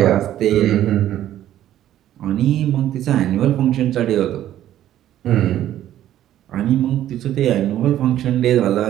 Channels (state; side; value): quieter; left; 12.3 dB